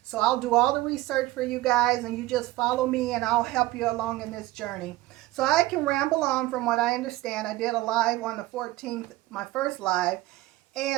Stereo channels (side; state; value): left; quieter; 17.7 dB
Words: So I'll do all the research for you guys, and you just follow me and I'll help you along in this journey. So I can ramble on from what I understand. I did a live on the 14th, my first live,